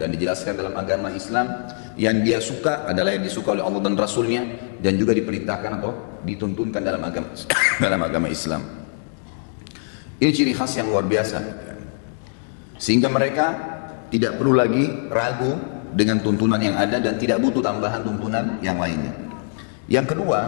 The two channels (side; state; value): right; silent; digital silence